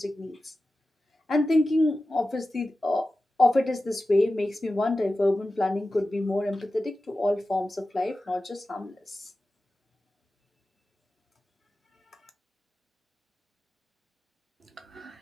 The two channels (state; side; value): normal; both; correlation 0.94